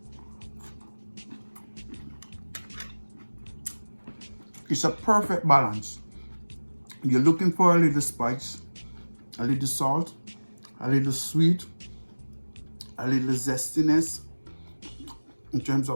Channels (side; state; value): both; inverted; correlation -1.00